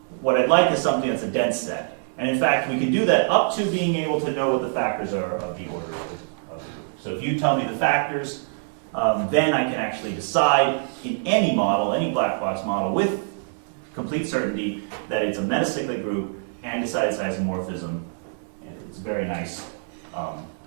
what I'd like is something that's a dense set. And in fact, we can do that up to being able to know what the factors are of the order of the group. So if you tell me the factors, then I can actually decide in any model, any black box model, with complete certainty that it's a metacyclic group and decide its isomorphism. And it's a very nice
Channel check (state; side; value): silent; left; 62 dB below the other